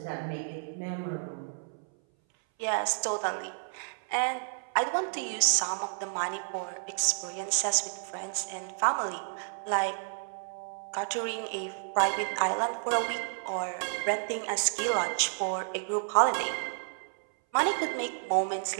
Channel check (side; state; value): left; silent; 57 dB below the other